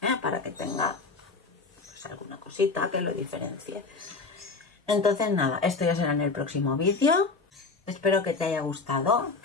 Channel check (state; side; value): quieter; right; 4.1 dB